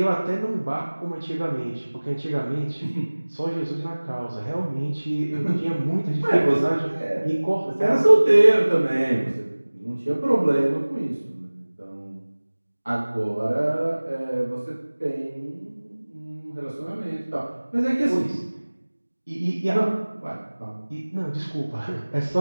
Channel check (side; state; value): both; inverted; correlation -1.00